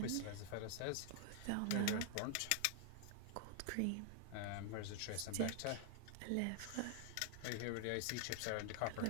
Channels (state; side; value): different; both; correlation 0.00